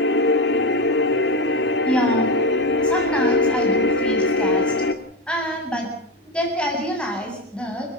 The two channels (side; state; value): both; normal; correlation 0.15